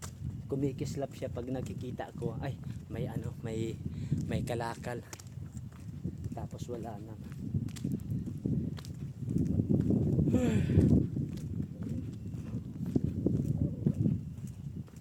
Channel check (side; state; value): both; identical; correlation 1.00